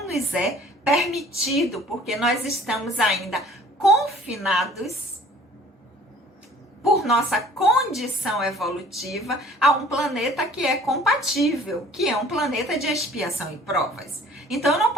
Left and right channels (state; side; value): normal; both; correlation 0.51